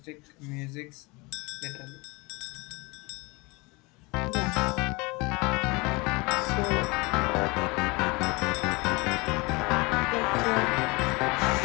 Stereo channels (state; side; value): quieter; right; 26.1 dB